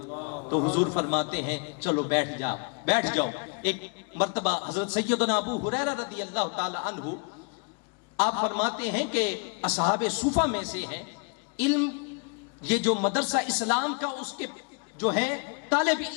تو حضور فرماتے ہیں چلو بیٹھ جاؤ. ایک مرتبہ حضرت سیدنا ابو ہریرہ رضی اللہ تعالی عنہ آپ فرماتے ہیں کہ اصحاب صوفہ میں سے ہیں. علم یہ جو مدرسہ اسلام کا اس کے جو ہے طالب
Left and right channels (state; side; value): quieter; right; 37.8 dB